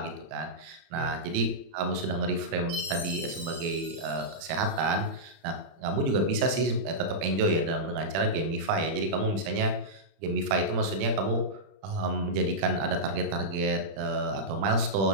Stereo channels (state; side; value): late; left; 31 ms